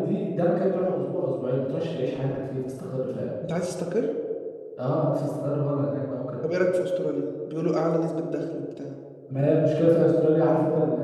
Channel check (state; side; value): identical; both; correlation 1.00